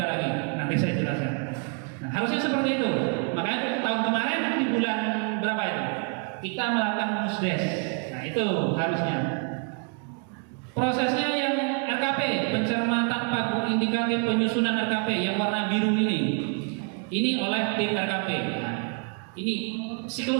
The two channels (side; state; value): left; quieter; 38.7 dB